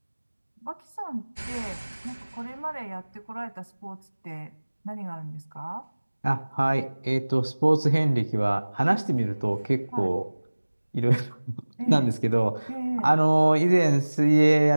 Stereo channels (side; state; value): both; inverted; correlation -1.00